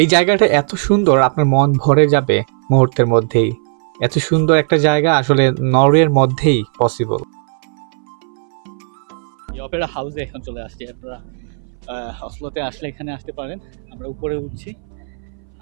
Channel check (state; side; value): silent; left; 62 dB below the other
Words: এই জায়গাটা এত সুন্দর, আপনার মন ভরে যাবে মুহূর্তের মধ্যেই। এত সুন্দর একটা জায়গা আসলে নরওয়ের মধ্যেই পসিবল। অপেরা হাউসে এখন চলে আসছি। আপনারা অসলোতে আসলে এখানে আসতে পারেন। আমরা উপরে উঠছি